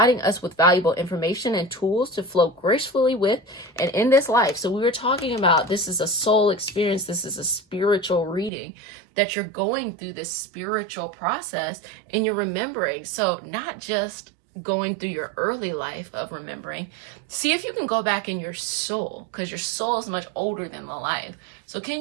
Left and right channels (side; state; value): left; drops out; at 8.5 s